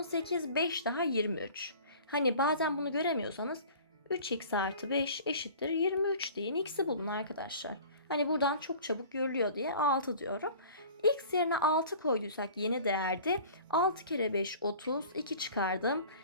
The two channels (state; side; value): inverted; both; correlation -0.44